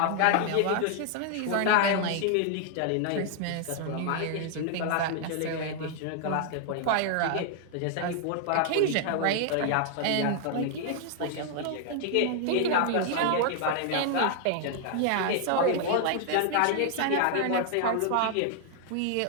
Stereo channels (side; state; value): both; different; correlation 0.00